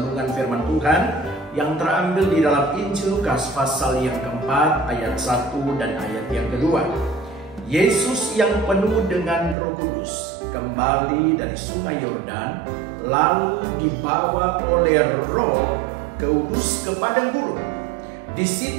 firman Tuhan yang terambil di dalam Injil Lukas pasal yang keempat ayat 1 dan ayat yang kedua. Yesus yang penuh dengan Roh Kudus kembali dari sungai Yordan, lalu dibawa oleh Roh Kudus ke padang gurun. Di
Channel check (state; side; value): drops out; left; at 9.6 s